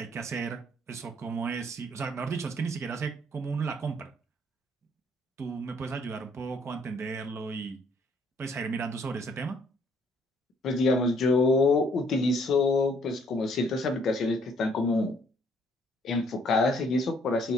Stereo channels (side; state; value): both; normal; correlation 0.64